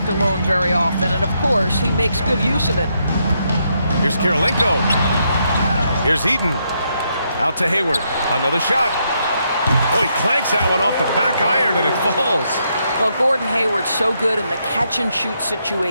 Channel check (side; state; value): both; inverted; correlation -0.78